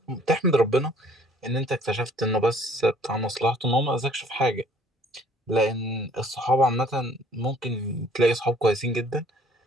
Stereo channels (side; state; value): both; normal; correlation 0.57